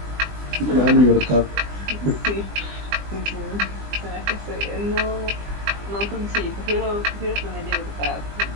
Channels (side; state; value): left; late; 20 ms